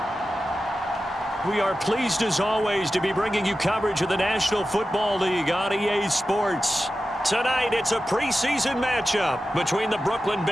We are pleased as always to be bringing you coverage of the National Football League on EA Sports. Tonight it's a preseason matchup between the Brooklyn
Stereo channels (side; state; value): both; normal; correlation 0.93